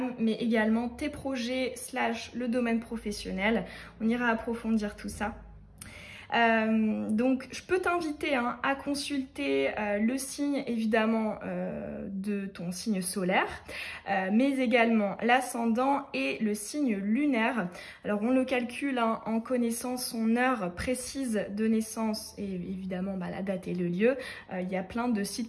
mais également tes projets / le domaine professionnel. On ira approfondir tout ça. Donc je peux t'inviter à consulter le signe évidemment de ton signe solaire, mais également l'ascendant et le signe lunaire. Alors on le calcule en connaissant son heure précise de naissance et évidemment la date et le lieu. Il y a plein de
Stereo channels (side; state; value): both; identical; correlation 1.00